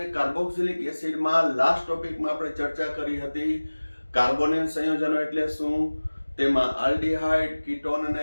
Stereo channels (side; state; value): both; inverted; correlation -1.00